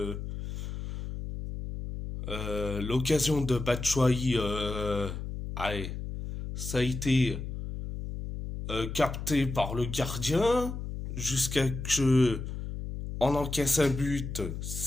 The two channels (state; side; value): noise; left; hum, 6 dB below the sound